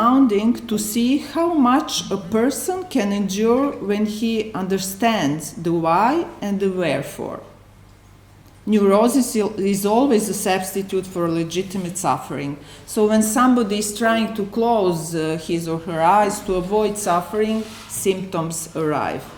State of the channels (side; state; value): both; identical; correlation 1.00